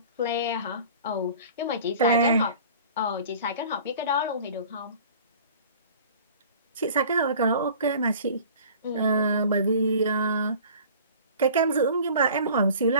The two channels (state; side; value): inverted; both; correlation -0.45